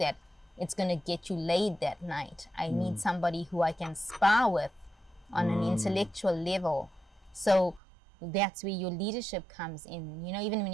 it's going to get you laid that night. I need somebody who I can spar with on an intellectual level. So that's where your leadership comes in. You know, even when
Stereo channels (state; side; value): drops out; left; at 7.8 s